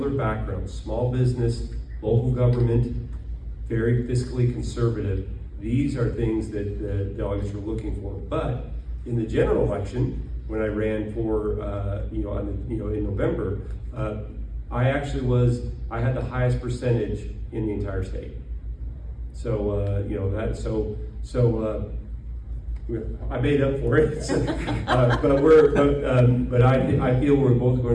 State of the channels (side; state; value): both; identical; correlation 1.00